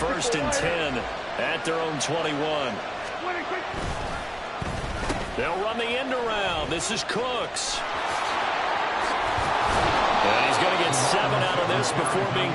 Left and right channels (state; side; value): identical; both; correlation 1.00